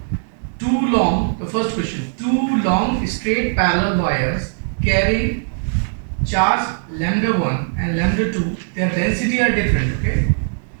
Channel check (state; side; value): silent; left; 65 dB below the other